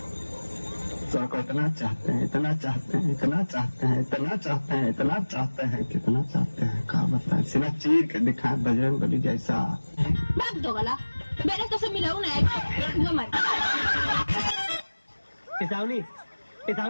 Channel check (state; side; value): inverted; both; correlation -1.00